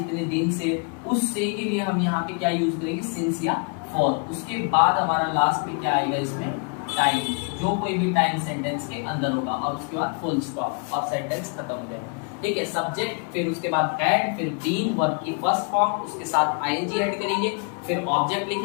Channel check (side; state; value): right; quieter; 37.5 dB